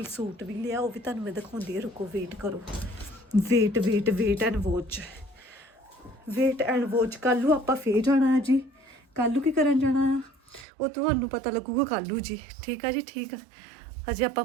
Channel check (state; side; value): drops out; left; at 10.7 s